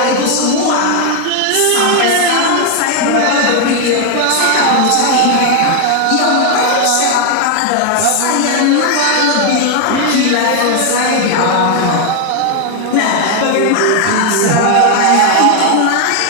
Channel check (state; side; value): different; both; correlation 0.00